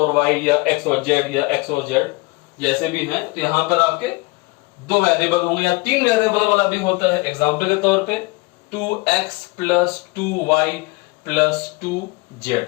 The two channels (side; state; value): right; quieter; 25.0 dB